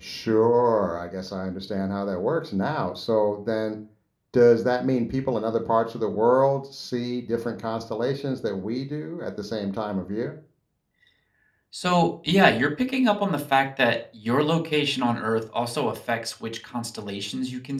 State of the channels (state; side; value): identical; both; correlation 1.00